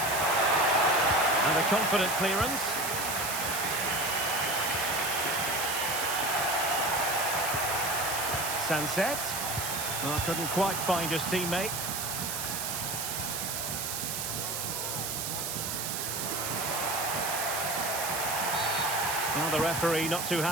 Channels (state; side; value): noise; right; hiss, 3 dB below the sound